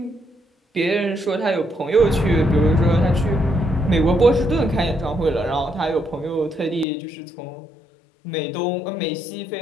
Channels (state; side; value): drops out; right; at 6.9 s